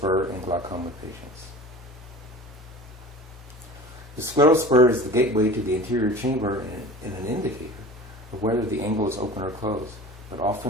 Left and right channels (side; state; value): both; normal; correlation 0.39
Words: in glaucoma patients. The scleral spur is the gateway to the anterior chamber and an indicator of whether the angle is open or closed, but